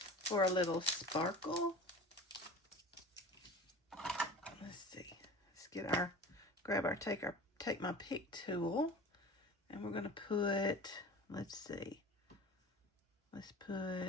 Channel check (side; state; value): both; normal; correlation 0.37